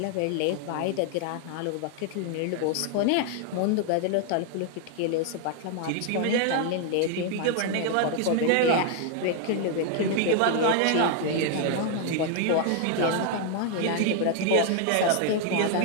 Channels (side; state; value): both; different; correlation 0.00